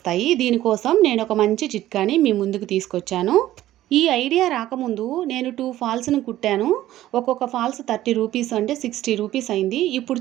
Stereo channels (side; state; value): left; quieter; 14.1 dB